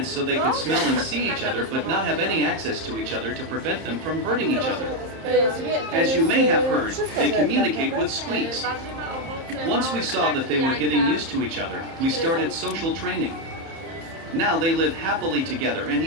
so they could smell and see each other but not have any access to each other to prevent them from hurting each other. As you may have heard, they communicate with squeaks. Once we saw that they were getting used to each other, we started social training. Now they live happily together and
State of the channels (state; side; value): late; left; 30 ms